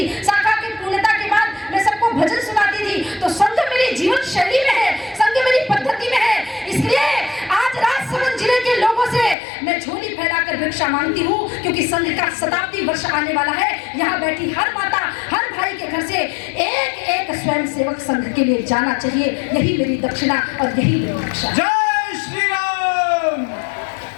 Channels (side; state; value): right; drops out; at 9.3 s